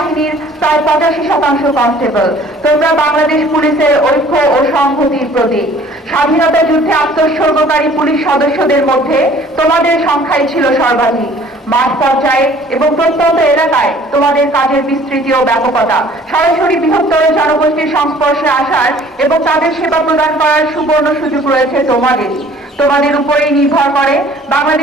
প্রায় 85% কনস্টেবল, তোমরা বাংলাদেশ পুলিশের ঐক্য ও সংহতির প্রতীক। স্বাধীনতা যুদ্ধে আত্মোৎসর্গকারী পুলিশ সদস্যদের মধ্যে তোমাদের সংখ্যাই ছিল সর্বাধিক। মাঠ পর্যায়ে এবং প্রত্যন্ত এলাকায় তোমাদের কাজের বিস্তৃতি ও ব্যাপকতা সরাসরি বৃহত্তর জনগোষ্ঠীর সংস্পর্শে আসার এবং তাদের সেবা প্রদান করার সুবর্ণ সুযোগ রয়েছে তোমাদেরই। তোমাদের উপরেই নির্ভর করে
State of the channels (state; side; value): normal; both; correlation 0.53